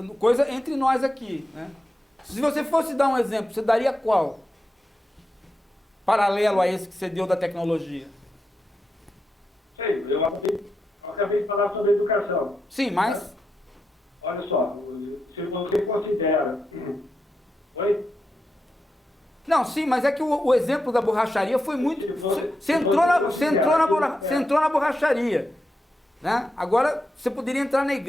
coisa entre nós aqui, né? Se você fosse dar um exemplo, você daria qual? Paralelo a esse que você deu da tecnologia. Sei, eu acabei de falar sobre educação. Sim, mas... Olha só, se você considera... Oi? Não, sim, mas é que o exemplo da borracharia foi muito... Você entrou na borracharia, né? Agora, você poderia entrar na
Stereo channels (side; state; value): both; normal; correlation 0.87